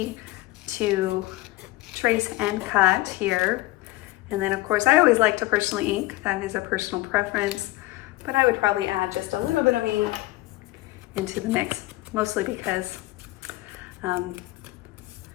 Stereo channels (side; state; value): right; quieter; 18.9 dB